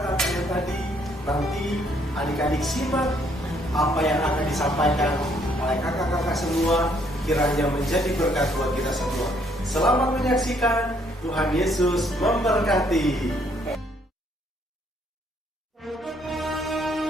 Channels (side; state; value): both; normal; correlation 0.67